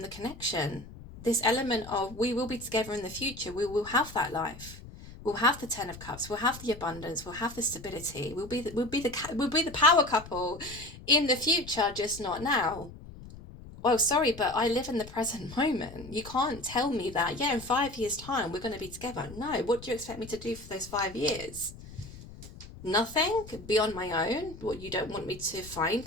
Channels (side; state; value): left; noise; rumble, 16 dB below the sound